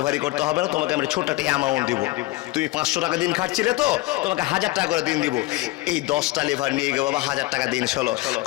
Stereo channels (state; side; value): quieter; right; 19.7 dB